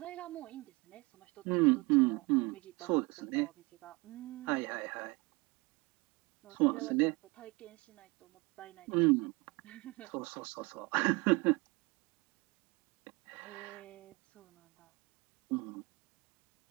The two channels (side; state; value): left; quieter; 25.3 dB